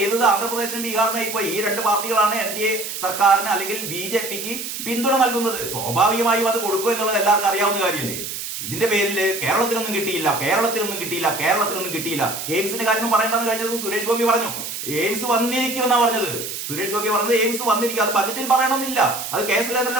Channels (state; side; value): noise; right; hiss, 6 dB below the sound